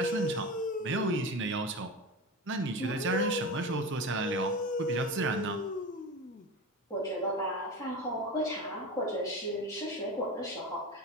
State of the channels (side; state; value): both; normal; correlation 0.26